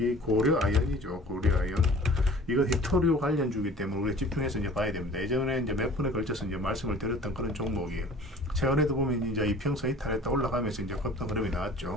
고려아연이죠. 고려아연. 이건 히토리오 관련주기 때문에 우리가 집중해서 이제 봐야 됩니다. 예전에 이제 몇 분에 걸쳐서 이제 말씀을 드렸던 그런 종목이에요. 최근에도 보면 이제 이평선 이탈했다 올라가면서 이제 급등 흐름이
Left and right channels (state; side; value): normal; both; correlation 0.46